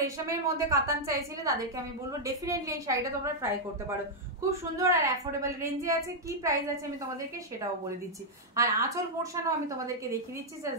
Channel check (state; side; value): normal; both; correlation -0.04